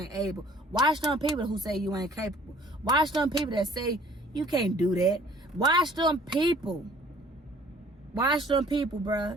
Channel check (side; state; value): both; normal; correlation 0.55